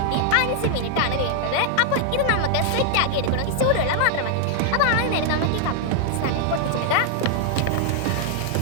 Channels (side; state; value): both; different; correlation 0.00